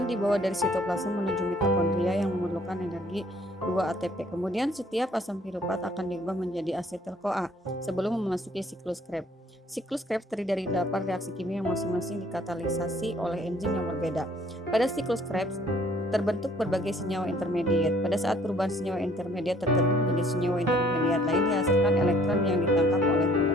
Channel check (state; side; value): normal; both; correlation 0.59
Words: dibawa dari sitoplasma menuju mitokondria yang memerlukan energi 2 ATP. Kemudian setiap asam pirufat akan diubah menjadi asetil-CoA sebelum memasuki siklus Krebs. Siklus Krebs terdiri dari 8 reaksi kimia yang masing-masing dikatalisasi oleh enzim yang berbeda. Pada siklus Krebs terbentuk berbagai senyawa intermediat. Pada saat perubahan senyawa intermediat tertentu menjadi senyawa intermediat lain dihasilkan elektron yang ditangkap oleh